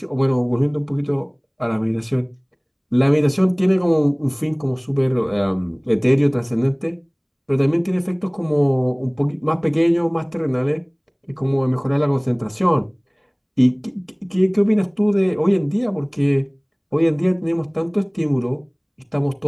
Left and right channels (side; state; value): both; identical; correlation 1.00